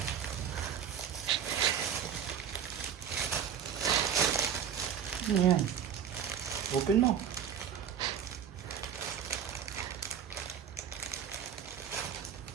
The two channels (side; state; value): left; quieter; 8.3 dB